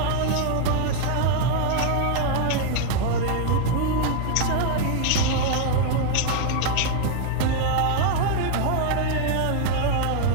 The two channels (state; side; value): different; both; correlation 0.00